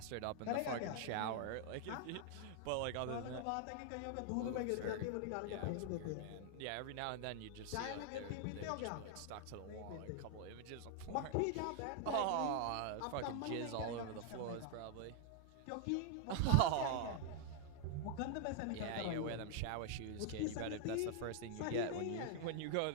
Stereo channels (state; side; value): different; both; correlation 0.00